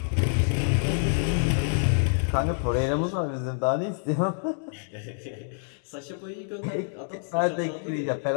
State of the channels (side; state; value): right; silent; digital silence